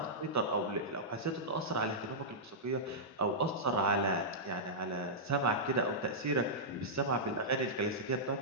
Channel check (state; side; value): normal; both; correlation -0.12